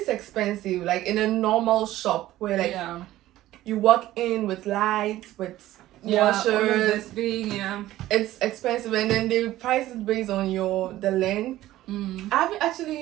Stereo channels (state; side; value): quieter; left; 15.1 dB